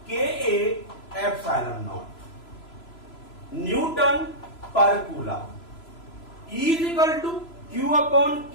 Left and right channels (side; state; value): right; late; 3.0 ms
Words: Ka epsilon naught Newton per coulomb. E is equal to Q upon